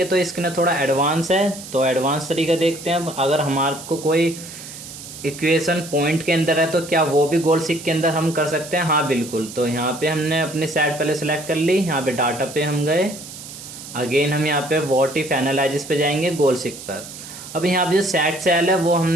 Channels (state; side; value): noise; right; hiss, 13 dB below the sound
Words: तो इसके ना थोड़ा एडवांस है। तो एडवांस तरीका देखते हैं। अगर हमारे को कोई इक्वेशन पॉइंट के अंदर है तो क्या वो भी गोल सीक के अंदर हम कर सकते हैं। हाँ बिल्कुल। तो यहाँ पे हमने अपनी साइड पहले सेलेक्ट कर ली। यहाँ पे डाटा पे हम गए, अगेन हम यहाँ पे व्हाट इफ एनालिसिस पे जाएंगे गोल सीक पर। अब यहाँ पे जो सेट सेल है वो